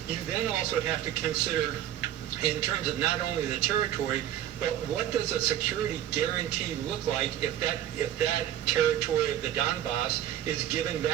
You then also have to consider, in terms of not only the territory, but what does a security guarantee look like if that territory of the Donbass is given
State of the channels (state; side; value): quieter; left; 11.6 dB